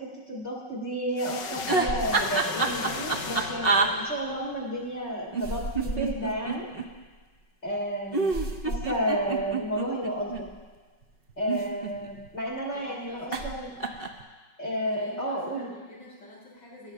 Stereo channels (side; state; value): right; late; 5.4 ms